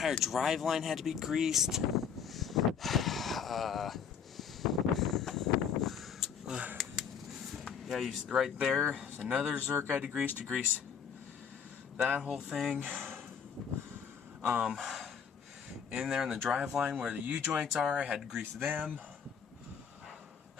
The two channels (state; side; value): quieter; right; 7.2 dB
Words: drive line had to be greased. Yeah, right there, another Zerk I had to grease that whole thing. In there in the drive line where the U-joints are, I had to grease them.